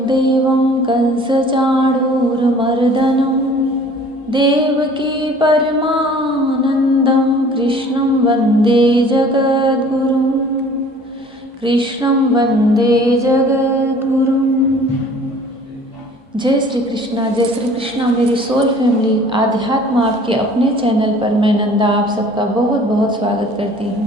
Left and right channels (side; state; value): both; normal; correlation 0.50